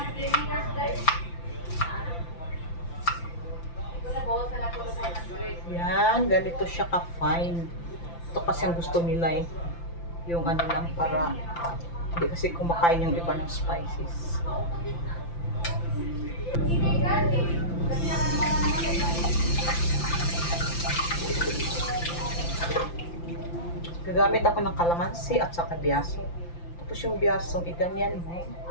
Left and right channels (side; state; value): right; late; 5.9 ms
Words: Yan, ganito siya ka-fine. Ito kasi ang gusto nila eh. Yung ano lang para hindi kasi kumakain yung iba ng spices. Gagamit ako ng kalamansi at saka biyaso. Tapos yung biyasong iganyan mo